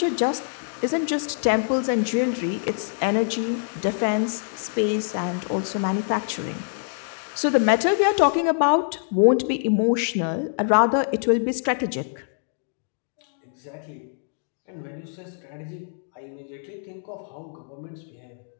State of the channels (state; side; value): silent; right; digital silence